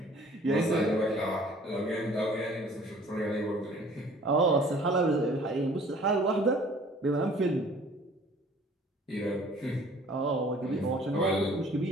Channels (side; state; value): both; normal; correlation 0.53